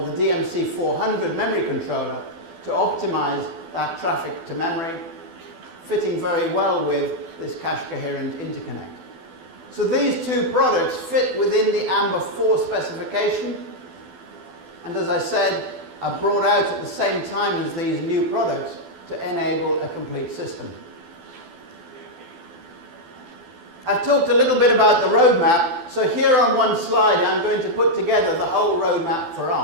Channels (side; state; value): left; late; 12 ms